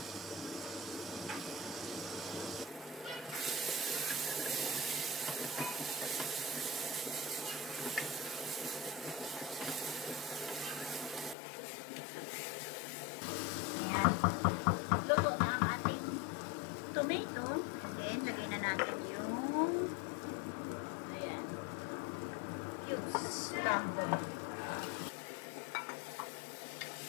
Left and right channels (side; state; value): right; drops out; at 11.4 s